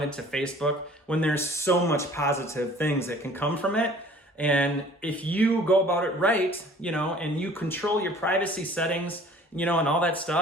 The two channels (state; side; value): normal; both; correlation 0.51